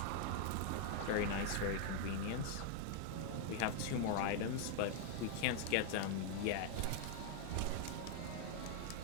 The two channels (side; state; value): both; different; correlation 0.00